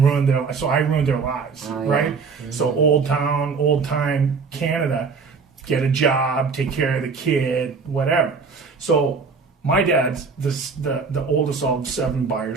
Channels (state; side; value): quieter; left; 5.0 dB